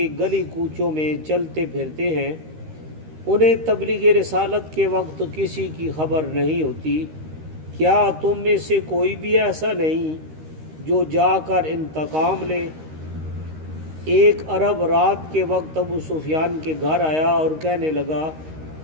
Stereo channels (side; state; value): left; late; 13 ms